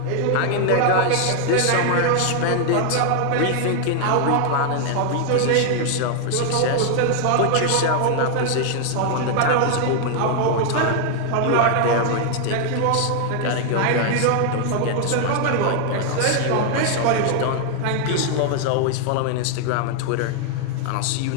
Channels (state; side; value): different; both; correlation 0.00